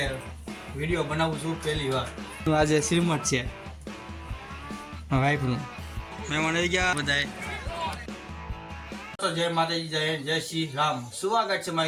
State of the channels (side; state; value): both; identical; correlation 1.00